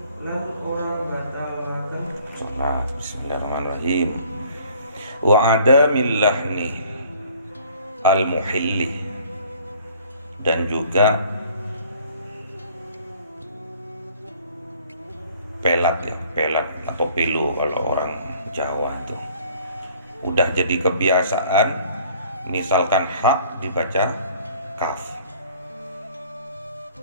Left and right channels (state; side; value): inverted; both; correlation -0.55